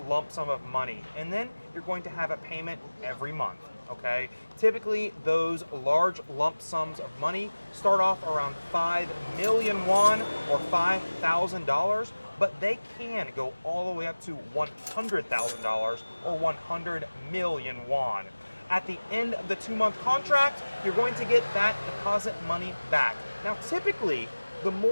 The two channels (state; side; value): inverted; both; correlation -1.00